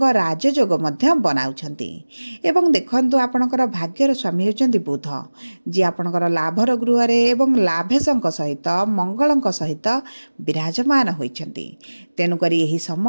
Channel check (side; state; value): both; inverted; correlation -1.00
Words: राजयोग मध्य बनाउछंती। एवं देखंतु आपणकर भाग्यर स्वामी हेउचंती बुध, जे आपणकर लाभर गृह रे एवं लाभेशंक सहित मंगलंक सहित विराजमान होइछंती। तेणुकरी यही